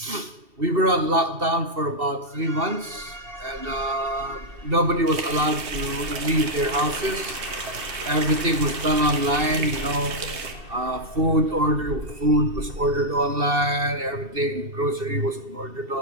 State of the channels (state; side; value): late; left; 2.7 ms